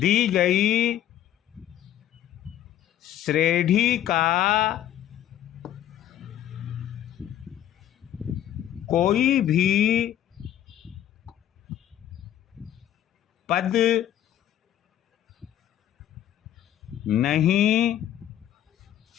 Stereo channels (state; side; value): quieter; right; 11.4 dB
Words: श्रेणी का कोई भी पद नहीं